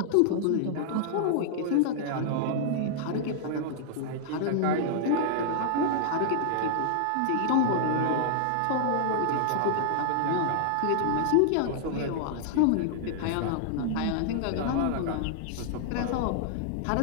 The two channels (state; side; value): different; both; correlation -0.01